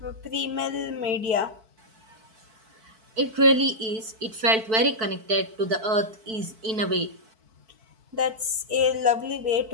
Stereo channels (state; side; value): late; left; 4.5 ms